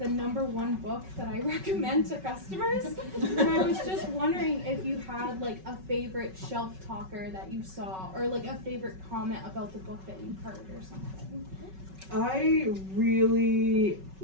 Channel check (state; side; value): late; left; 5.3 ms